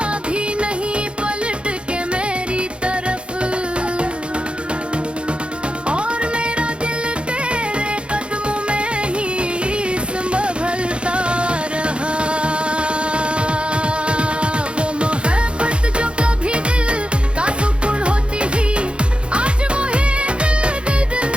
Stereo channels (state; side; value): late; left; 0.057 ms